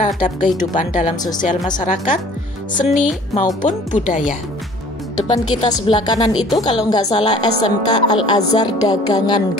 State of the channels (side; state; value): both; normal; correlation 0.51